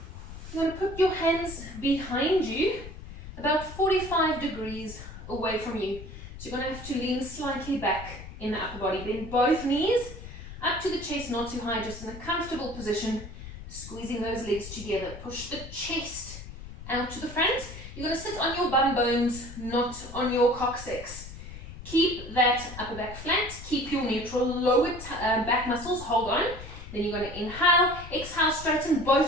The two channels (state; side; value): noise; left; rumble, 13 dB below the sound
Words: You're going to put your hands behind you, about 45 degrees away from you. So you're going to have to lean slightly back in the upper body. Bend both knees up to the chest, not too high, just in a comfortable position. Squeezing those legs together. Push the chest out to the front. You're going to sit on your bum bones, not on your coccyx. Keep that upper back flat. Keep your neutral lower back muscles. Hold on. Then you're going to inhale. Exhale, straighten